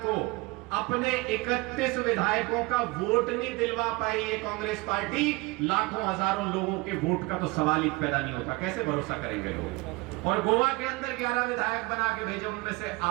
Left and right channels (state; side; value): quieter; left; 24.0 dB